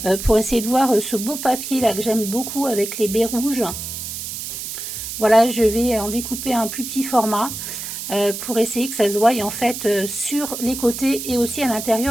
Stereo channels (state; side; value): noise; right; hiss, 7 dB below the sound